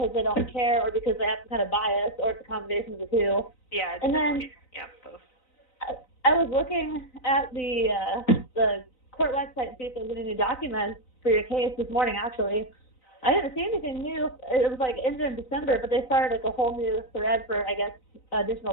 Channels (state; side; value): late; right; 3.9 ms